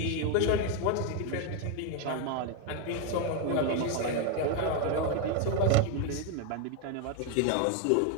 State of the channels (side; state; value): both; different; correlation 0.01